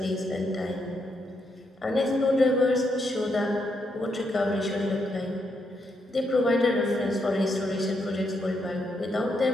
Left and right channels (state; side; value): normal; both; correlation 0.79